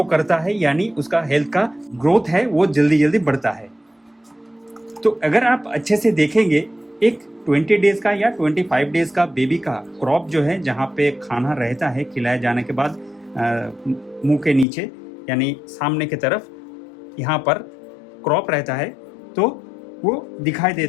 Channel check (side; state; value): right; drops out; at 14.7 s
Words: करता है, यानी उसका हेल्थ का ग्रोथ है वो जल्दी जल्दी बढ़ता है। तो अगर आप अच्छे से देखेंगे, एक 20 डेज का या 25 डेज का बेबी का क्रॉप जो है, जहाँ पे खाना रहता है खिलाए जाने के बाद मुंह के नीचे यानी सामने की तरफ यहाँ पर क्रॉप रहता है, तो वो दिखाई